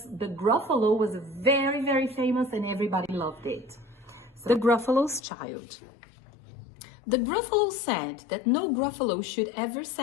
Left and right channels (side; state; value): right; drops out; at 5.2 s